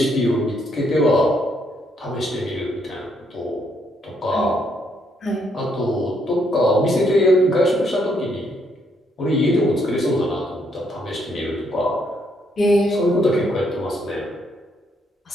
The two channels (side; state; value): both; normal; correlation 0.73